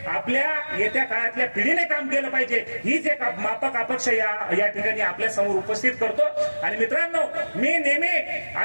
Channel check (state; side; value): inverted; both; correlation -1.00